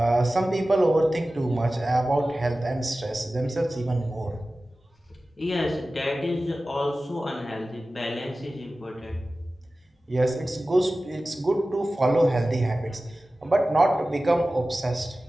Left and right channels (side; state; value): both; normal; correlation 0.96